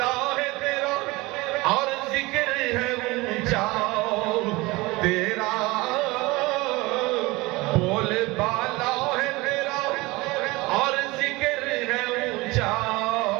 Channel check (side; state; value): left; quieter; 22.3 dB